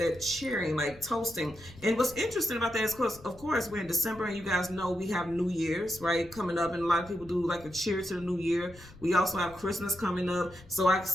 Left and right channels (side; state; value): left; noise; rumble, 20 dB below the sound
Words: cheering, like toasting. And what's interesting about that is, of course, we're in December, and you guys know we have New Year's, right, coming up, and a lot of people do like a cheer to the new year. We also have Christmas coming up, so I can